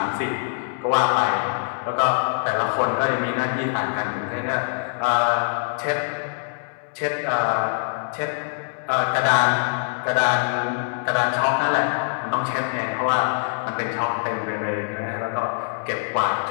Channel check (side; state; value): right; silent; 63 dB below the other